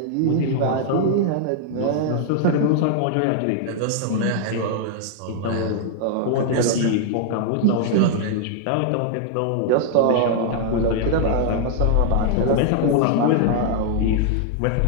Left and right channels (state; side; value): different; both; correlation -0.01